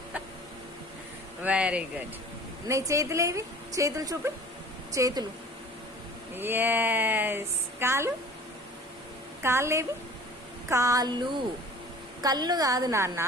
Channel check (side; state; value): both; normal; correlation 0.46